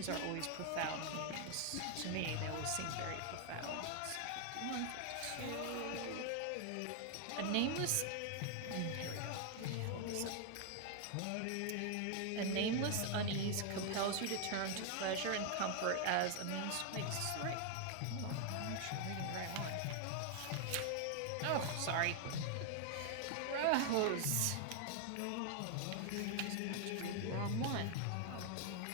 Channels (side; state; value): both; different; correlation 0.00